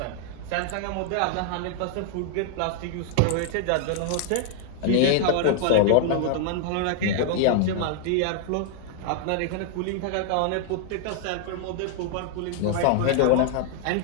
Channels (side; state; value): both; different; correlation 0.00